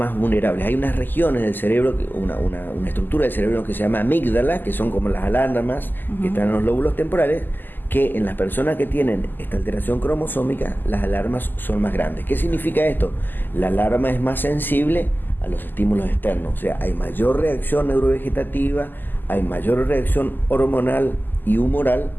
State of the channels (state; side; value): late; right; 0.090 ms